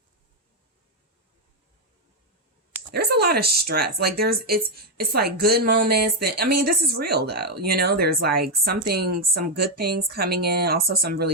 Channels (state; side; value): normal; both; correlation 0.03